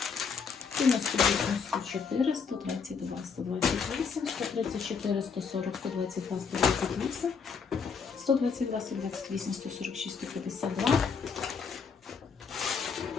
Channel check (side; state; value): right; quieter; 5.8 dB